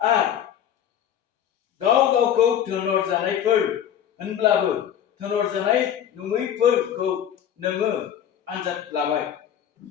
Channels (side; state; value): right; quieter; 9.7 dB